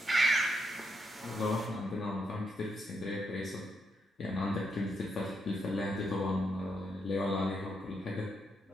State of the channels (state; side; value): normal; both; correlation 0.80